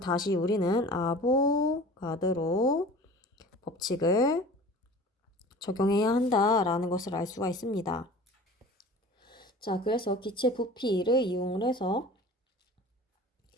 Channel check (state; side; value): normal; both; correlation 0.41